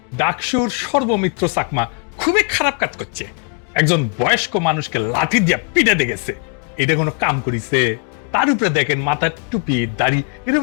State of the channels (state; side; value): quieter; right; 36.8 dB